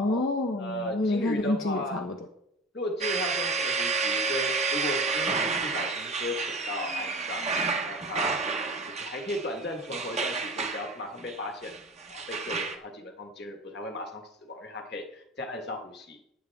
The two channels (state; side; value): normal; both; correlation 0.35